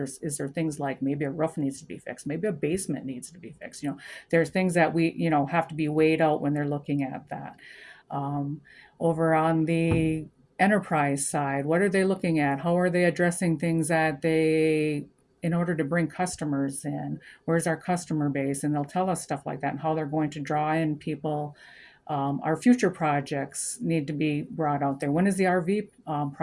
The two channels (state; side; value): identical; both; correlation 1.00